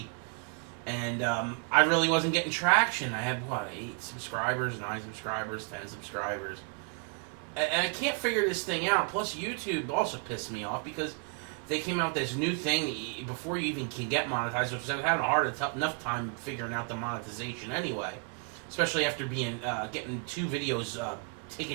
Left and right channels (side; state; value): left; quieter; 37.7 dB